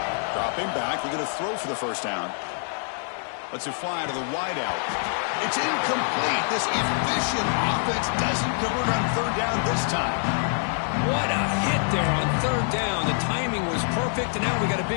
Dropping back, looking to throw for the first down. Lets it fly to the wideout. It's incomplete. This efficient offense doesn't convert on 3rd down this time. What a hit there on 3rd down. The timing was perfect, and now we got a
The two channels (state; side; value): silent; right; 57 dB below the other